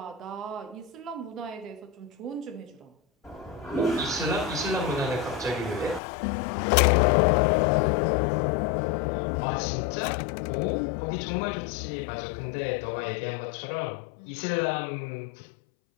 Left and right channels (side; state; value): right; drops out; at 6.0 s